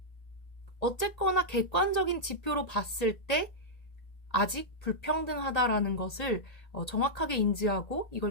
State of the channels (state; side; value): late; right; 1.8 ms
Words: 어쨌거나 객관적인 지표로 봤을 때 아직 불평등하다라는 것을 정확하게 인지하고